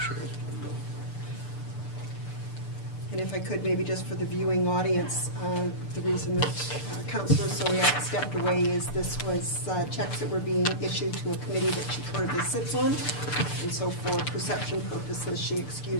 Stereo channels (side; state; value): right; late; 6.8 ms